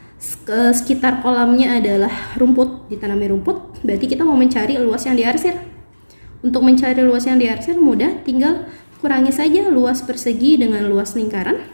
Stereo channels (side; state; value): both; inverted; correlation -1.00